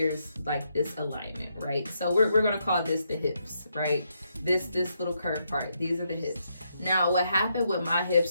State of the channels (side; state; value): both; inverted; correlation -0.79